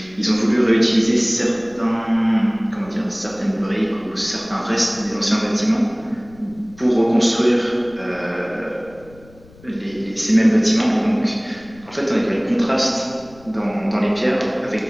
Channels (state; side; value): noise; left; rumble, 24 dB below the sound